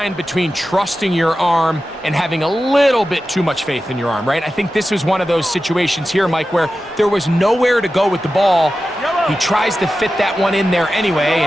between trusting your arm and having a little bit too much faith in your arm, right? I think this was one of those situations here, Mike, where there was nowhere to go with the ball. He tries to fit that one in there anyway,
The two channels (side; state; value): both; normal; correlation 0.93